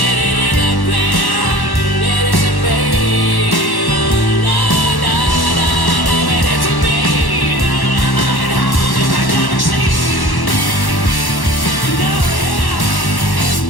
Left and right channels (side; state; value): right; late; 1.1 ms